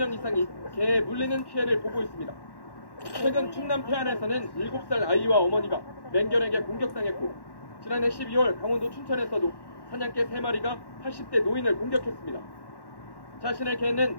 이상이 개에 물리는 피해를 보고 있습니다. 최근 충남 태안에서는 7살 아이와 어머니가 맹견에게 공격당했고 지난해 12월 강원도 춘천에서도 사냥개 3마리가 80대 노인을 공격했습니다. 자신의 개는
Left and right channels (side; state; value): right; late; 1.1 ms